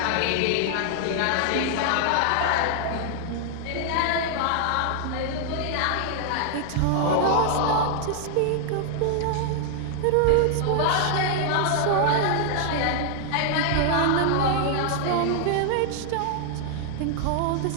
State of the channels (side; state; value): both; different; correlation 0.00